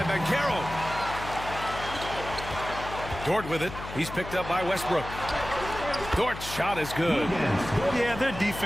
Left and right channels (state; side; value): noise; left; hum, 10 dB below the sound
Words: Banchero. Dort with it. He's picked up by Westbrook. Dort's shot is good. Yeah, their